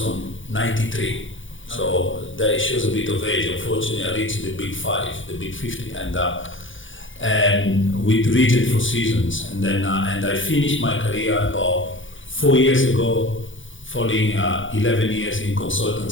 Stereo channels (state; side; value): late; right; 0.56 ms